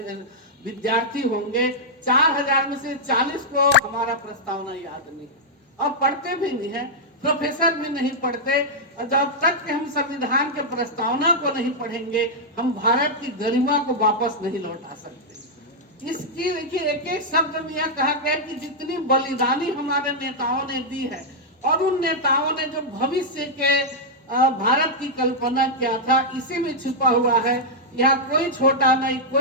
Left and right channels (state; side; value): normal; both; correlation -0.06